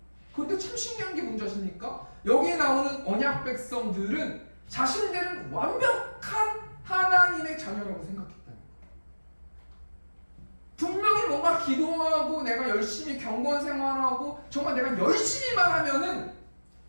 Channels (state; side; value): inverted; both; correlation -1.00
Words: 그런데 참 신기한 게 뭔지 아십니까? 여기에 나오는 언약 백성들은 자신들은 완벽한 하나님의 자녀라고 생각했다는 거예요. 분명히 뭔가 기도하고 내가 열심히 경건 생활하고 정말 내가 열심히만 하면은